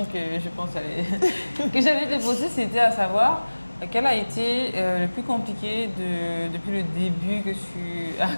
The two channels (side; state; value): both; inverted; correlation -1.00